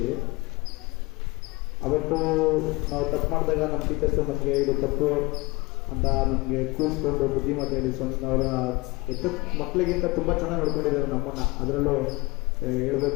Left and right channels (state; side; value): quieter; right; 23.7 dB